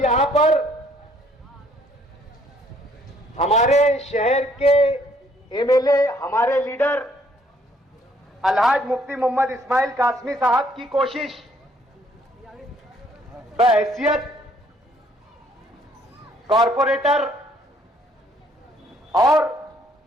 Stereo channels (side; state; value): both; normal; correlation 0.65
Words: यहां पर हमारे शहर के एमएलए, हमारे लीडर अलहाज मुफ्ती मोहम्मद इस्माइल कासमी साहब की कोशिश बहैसियत कॉरपोरेटर और